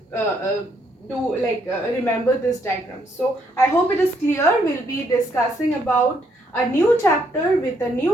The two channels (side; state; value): both; normal; correlation 0.72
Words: remember this diagram. So I hope it is clear. We'll be discussing about a new chapter with a